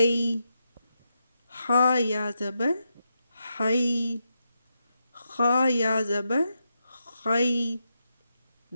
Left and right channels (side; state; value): both; inverted; correlation -0.86